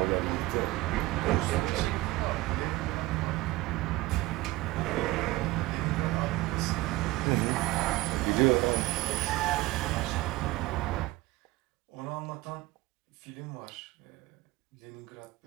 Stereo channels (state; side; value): quieter; left; 19.2 dB